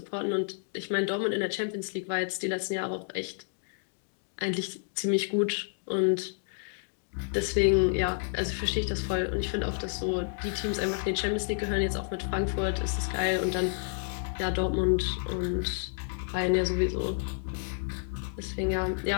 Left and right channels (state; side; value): silent; right; digital silence